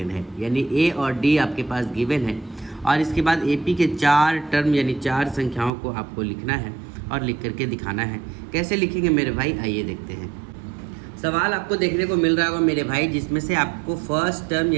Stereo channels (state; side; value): drops out; left; at 5.7 s